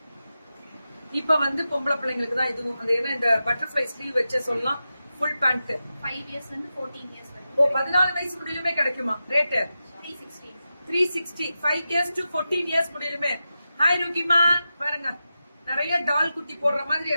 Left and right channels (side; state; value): both; inverted; correlation -0.91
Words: இப்ப வந்து பொம்பளை பிள்ளைங்களுக்கு தான் இதுவும். அது என்ன இந்த பட்டர்ஃபிளை ஸ்லீவ் வச்சே சொல்லலாம். Full pant 5 years and 14 years வரைக்கும். ஓ 14 வயசு முடியுமே கிடைக்குமா? ரேட் 360. 360. 5 years to 14 years முடியுமே. ஹாய் ருகிமா பாருங்க, நிறைய டால் குட்டி போடுற மாதிரி